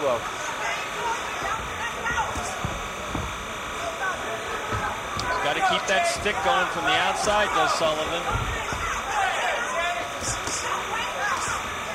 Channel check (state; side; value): identical; both; correlation 1.00